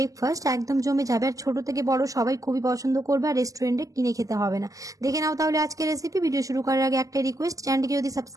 একদম জমে যাবে, আর ছোট থেকে বড় সবাই খুবই পছন্দ করবে, আর রেস্টুরেন্টে কিনে খেতে হবে না। দেখে নাও তাহলে আজকের রেসিপি। ভিডিও শুরু করার আগে একটা রিকোয়েস্ট, চ্যানেলটিকে যদি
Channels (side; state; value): left; late; 0.17 ms